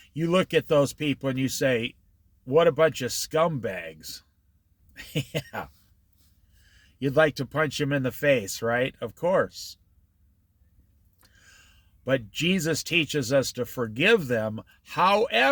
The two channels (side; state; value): both; identical; correlation 1.00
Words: You look at those people and you say, what a bunch of scumbags. Yeah. You'd like to punch him in the face, right? Of course. But Jesus teaches us to forgive them.